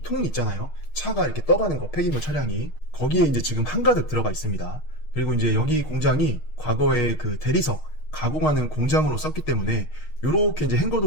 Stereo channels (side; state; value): right; late; 6.5 ms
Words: 통 있잖아요. 차가 이렇게 떠가는 거, 폐기물 차량이 거기에 이제 지금 한가득 들어가 있습니다. 그리고 이제 여기 공장이 과거에 그 대리석 가공하는 공장으로 썼기 때문에 요렇게 이제